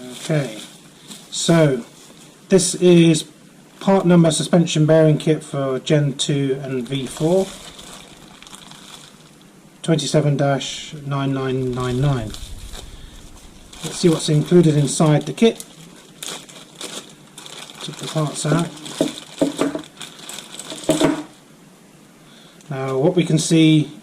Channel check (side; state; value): both; identical; correlation 1.00